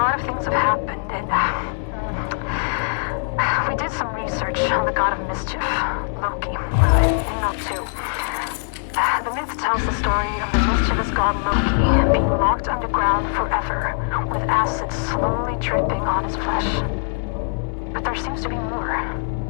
of things have happened, and we did some research on the god of mischief, Loki, in Note 2. The myth tells the story of the mischievous god Loki being locked underground forever, with acid slowly dripping on his flesh. But there seems to be more.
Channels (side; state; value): right; silent; digital silence